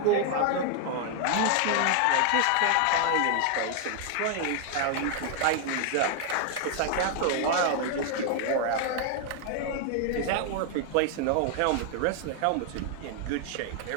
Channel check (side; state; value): both; different; correlation 0.00